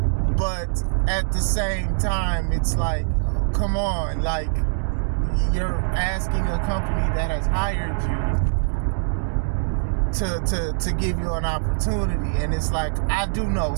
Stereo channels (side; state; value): left; silent; digital silence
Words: but at the same time, it's like, come on, like, you're asking a company that has hired you to give you an opportunity. And it's like, I do know